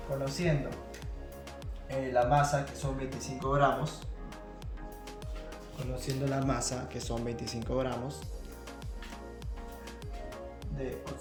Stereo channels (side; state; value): both; identical; correlation 1.00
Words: conociendo la masa, que son 25 gramos, conociendo la masa, que son 25 gramos de